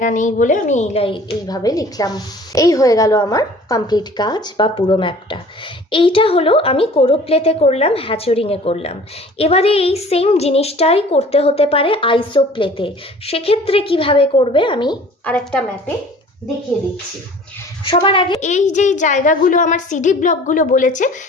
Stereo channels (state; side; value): normal; both; correlation 0.48